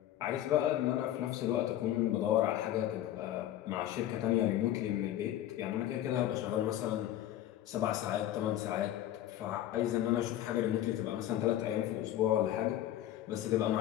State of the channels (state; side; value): quieter; right; 12.8 dB